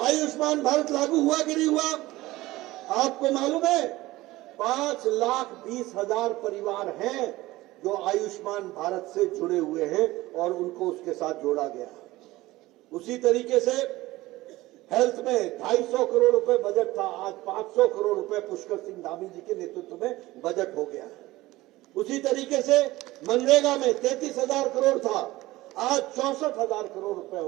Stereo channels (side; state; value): left; quieter; 18.3 dB